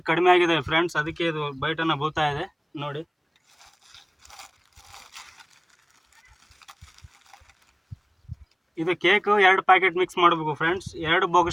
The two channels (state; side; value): identical; both; correlation 1.00